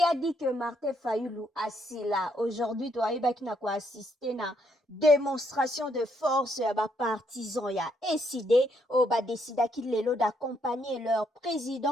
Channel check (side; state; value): both; normal; correlation 0.73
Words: a dit que Martin Fayulu assis là aujourd'hui, toi, il va assister na démonstration de force ya ba partisans ya décidé au ba décida qu'il est là d'accompagner leur